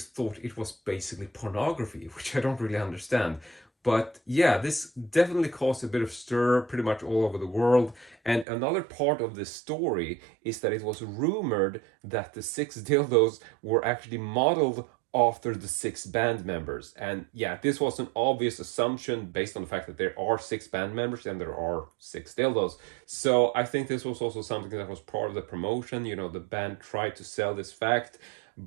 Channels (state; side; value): drops out; left; at 8.5 s